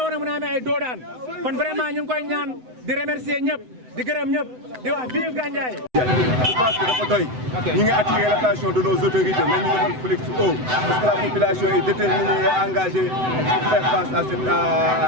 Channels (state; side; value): late; left; 7.9 ms